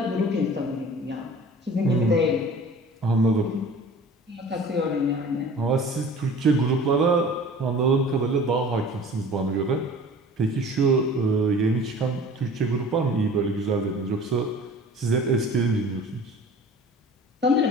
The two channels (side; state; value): both; normal; correlation 0.44